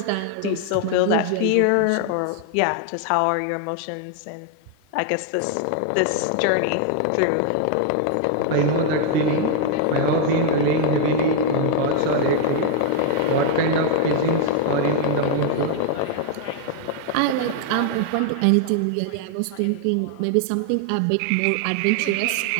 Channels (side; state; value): both; different; correlation 0.00